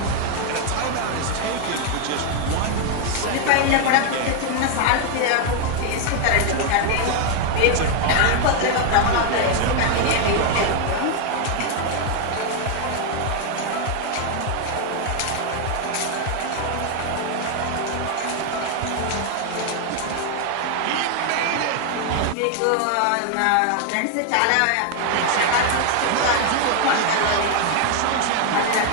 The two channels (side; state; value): both; different; correlation 0.00